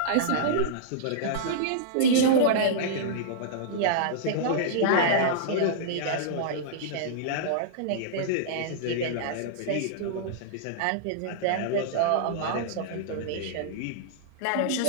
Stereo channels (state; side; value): different; both; correlation -0.02